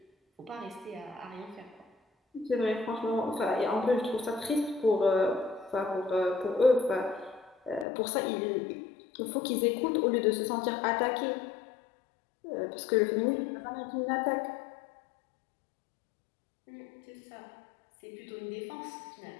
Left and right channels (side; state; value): right; drops out; at 7.9 s